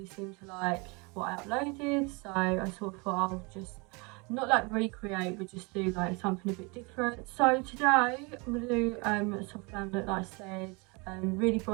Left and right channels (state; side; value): quieter; left; 29.4 dB